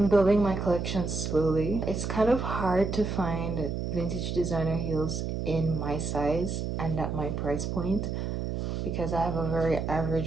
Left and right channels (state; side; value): noise; right; hum, 2 dB below the sound